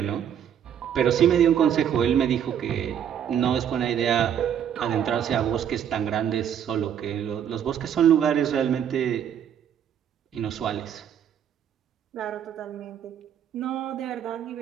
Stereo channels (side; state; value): left; quieter; 9.1 dB